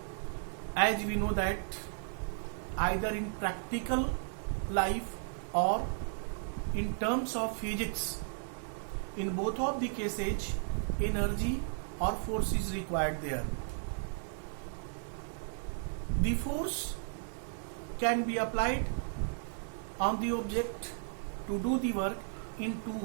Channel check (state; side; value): silent; left; 55 dB below the other